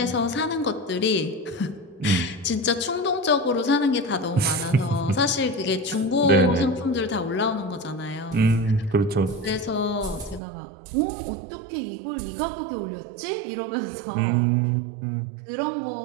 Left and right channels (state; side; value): drops out; left; at 10.4 s